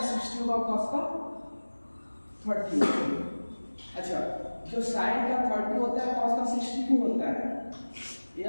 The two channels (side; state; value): both; inverted; correlation -1.00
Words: 60 होगा वो कॉस का 30 होगा। अच्छा, जो साइन का 30 होता है कॉस का 60 क्यों होता है, ये